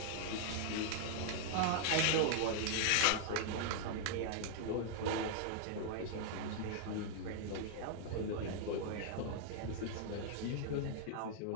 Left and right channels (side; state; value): both; different; correlation -0.01